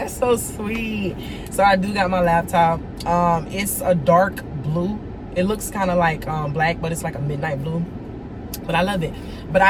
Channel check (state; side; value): identical; both; correlation 1.00